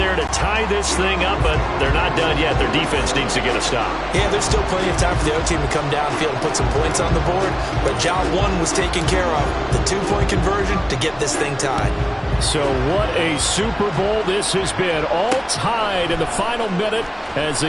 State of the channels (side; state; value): both; identical; correlation 1.00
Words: to tie this thing up, but they're not done yet. Their defense needs to get a stop. Yeah, there's still plenty of time for the other team to come downfield and put some points on the board, but job 1 was taken care of. The 2-point conversion to get this thing tied. So what a Super Bowl this has been. All tied in the final minute as